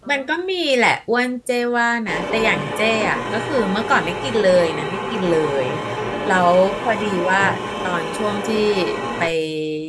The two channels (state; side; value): identical; both; correlation 1.00